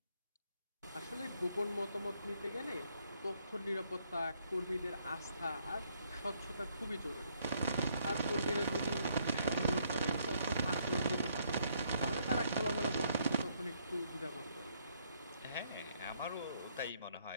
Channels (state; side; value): inverted; both; correlation -0.70